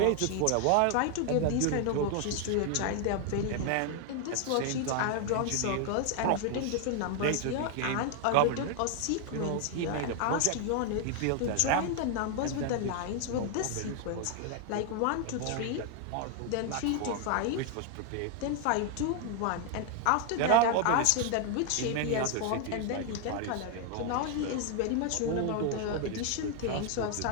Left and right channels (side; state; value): both; different; correlation 0.00